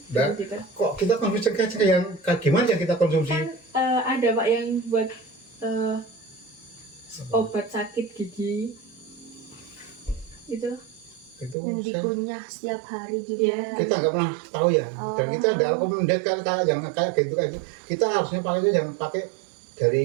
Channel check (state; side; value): drops out; left; at 11.6 s